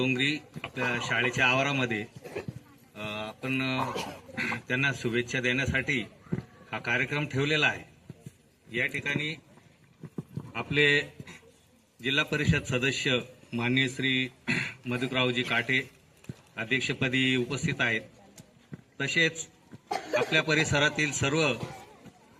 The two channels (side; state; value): both; identical; correlation 1.00